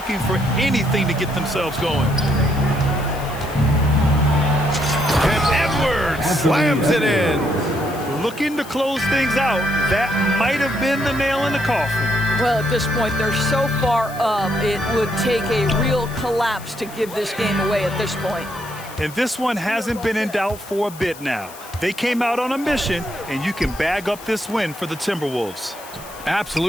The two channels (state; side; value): noise; left; hiss, 18 dB below the sound